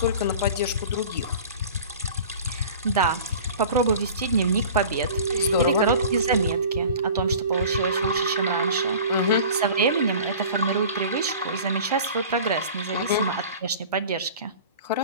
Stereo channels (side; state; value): both; inverted; correlation -0.41